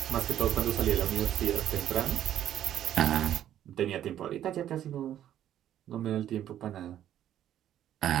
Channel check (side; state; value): left; quieter; 11.3 dB